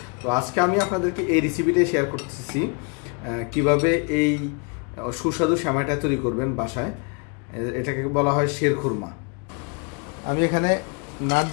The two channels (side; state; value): right; quieter; 35.0 dB